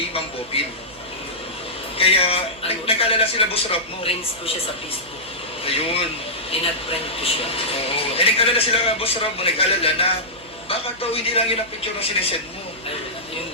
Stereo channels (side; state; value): right; noise; hum, 24 dB below the sound